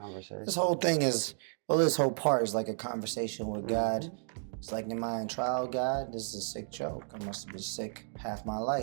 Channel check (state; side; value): silent; left; digital silence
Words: This whole thing is, well, this whole part is like a conversation with God. It's like, am I in trial, God? This is a sick joke. I must have been sick half my